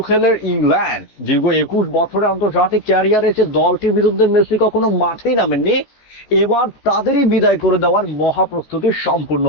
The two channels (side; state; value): right; late; 14 ms